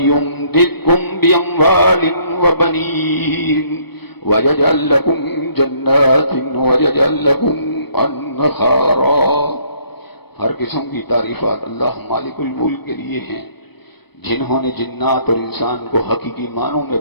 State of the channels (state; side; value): late; right; 0.98 ms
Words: بأموال وبنين ويجعل لكم جنات ويجعل لكم انہارا۔ ہر قسم کی تعریفات اللہ مالک الملک کے لیے ہیں، جنہوں نے جنات اور انسان کو حقیقی معنوں میں